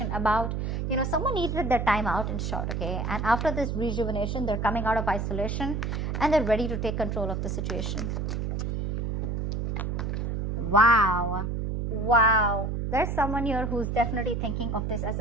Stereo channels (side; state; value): right; noise; hum, 2 dB below the sound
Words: about. Someone needed their time out, in short, okay? And after this rejuvenation, they're coming out of isolation and they're ready to take control of the situation. Wow. There's someone here who's definitely thinking of this as